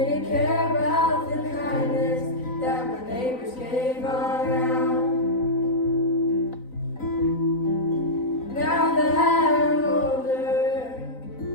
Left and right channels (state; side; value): late; right; 4.0 ms